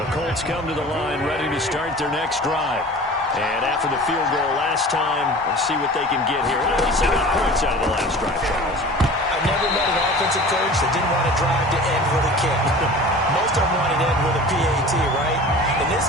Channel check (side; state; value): both; normal; correlation 0.40